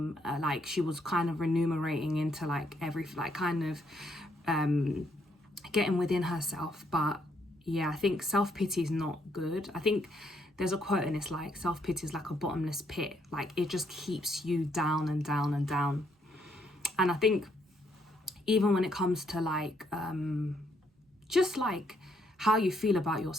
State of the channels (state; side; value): normal; both; correlation 0.73